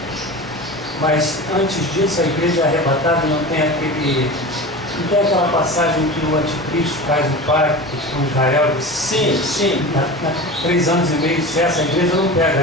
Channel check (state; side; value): normal; both; correlation 0.31